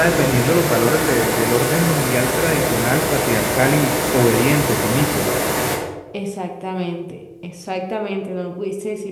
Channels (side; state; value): both; identical; correlation 1.00